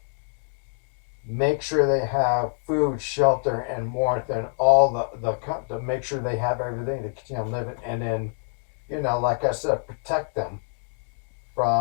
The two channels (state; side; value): silent; right; 57 dB below the other